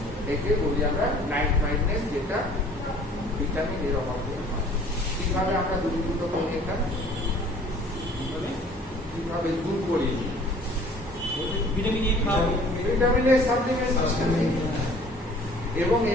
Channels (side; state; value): both; normal; correlation 0.52